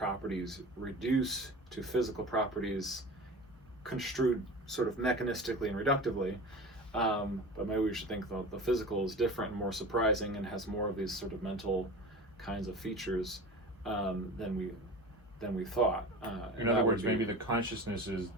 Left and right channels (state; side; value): normal; both; correlation 0.33